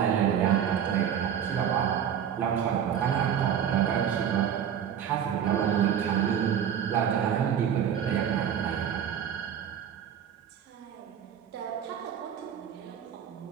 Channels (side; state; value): left; quieter; 8.8 dB